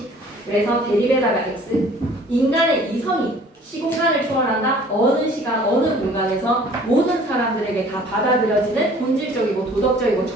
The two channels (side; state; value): both; normal; correlation 0.52